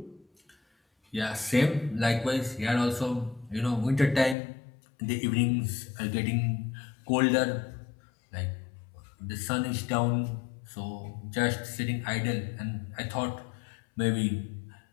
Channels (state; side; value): drops out; right; at 4.4 s